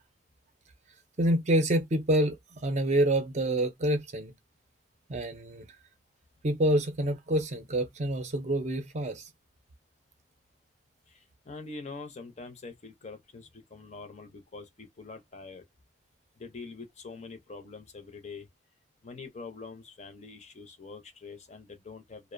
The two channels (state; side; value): normal; both; correlation 0.40